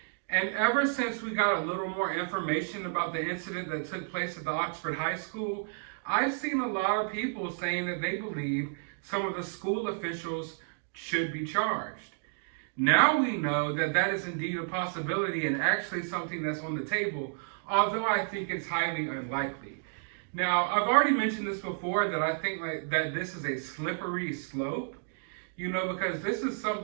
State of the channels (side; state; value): left; silent; digital silence